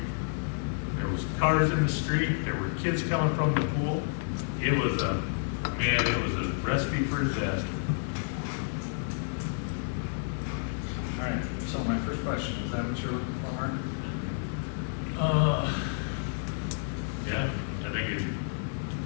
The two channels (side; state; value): right; silent; digital silence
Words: There was cars in the street. There were kids coming from the pool. It was a recipe for disaster. All right, so my first question, is that what you're looking for, Mark? Yeah, I think it,